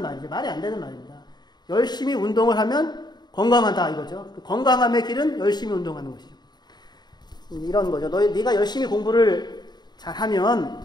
말이죠. 말이 안 되는 말입니다. 열심히 운동을 하면 건강하다 이거죠. 건강함의 길은 열심히 운동하는 것이죠. 이런 거죠. 네가 열심히 공부를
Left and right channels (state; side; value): late; right; 0.20 ms